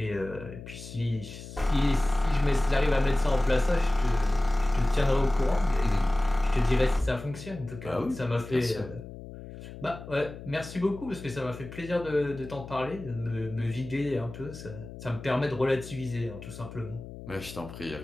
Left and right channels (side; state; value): left; noise; hum, 13 dB below the sound